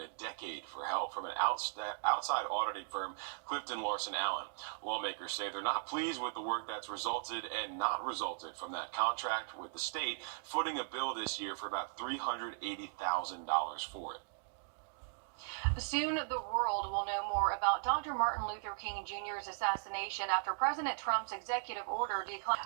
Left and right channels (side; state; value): left; silent; digital silence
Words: a decade for help from an outside auditing firm, Clifton Larson Allen. Lawmakers say they're not pleased with the work that's resulted and not resulted from that contract, with the state footing a bill this year for about $380,000 for it. Soon, the world will know more about Dr. Martin Luther King Jr.'s assassination after President Trump's executive order declined.